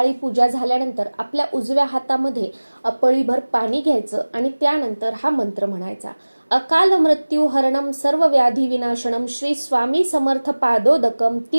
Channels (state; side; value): inverted; both; correlation -1.00